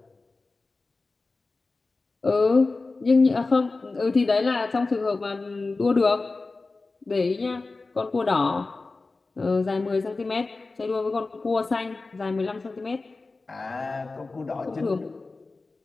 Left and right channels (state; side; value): quieter; right; 3.6 dB